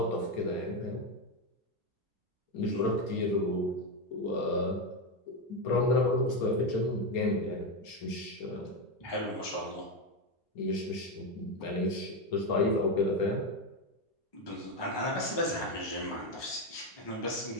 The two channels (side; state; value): both; normal; correlation 0.10